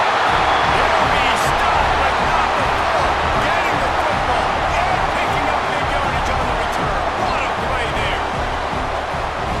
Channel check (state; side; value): identical; both; correlation 1.00